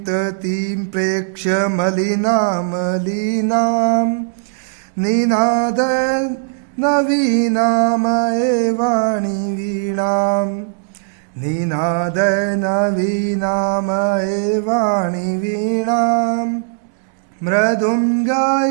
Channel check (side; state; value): left; silent; digital silence